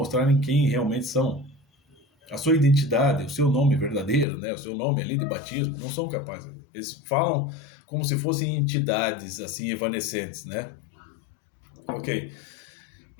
quem realmente são. A sua identidade, o seu nome verdadeiro, né? O seu nome ali de batismo, não são capazes. Eles falam como se fossem entidades assim evanescentes, né? Ok.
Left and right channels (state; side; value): drops out; right; at 4.2 s